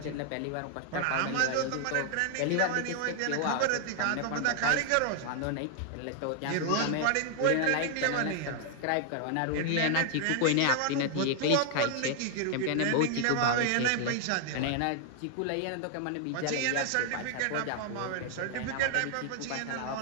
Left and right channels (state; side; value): different; both; correlation 0.00